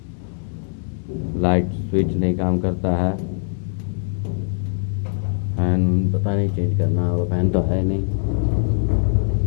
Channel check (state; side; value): silent; right; 64 dB below the other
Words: लाइट स्विच नहीं काम करता है। फैन पता नहीं चेंज करना होगा, फैन तो है नहीं।